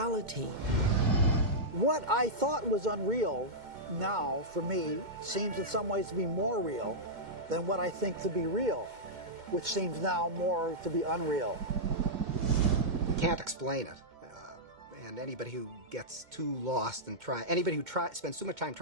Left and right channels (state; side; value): late; left; 2.2 ms